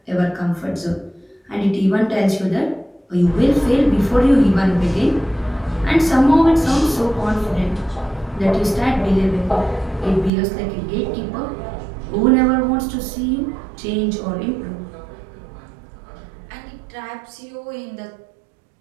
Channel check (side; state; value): left; drops out; at 10.3 s